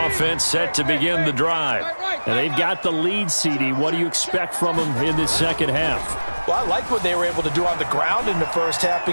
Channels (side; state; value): both; inverted; correlation -1.00